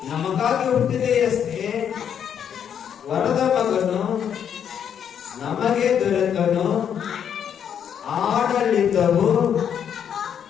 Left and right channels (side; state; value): right; quieter; 8.5 dB